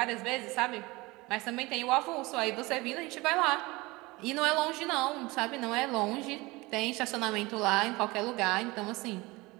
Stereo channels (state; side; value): quieter; left; 22.6 dB